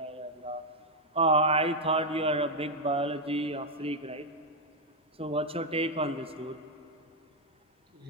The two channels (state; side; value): normal; both; correlation 0.01